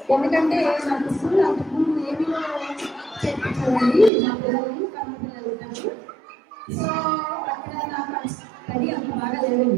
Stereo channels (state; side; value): drops out; left; at 4.1 s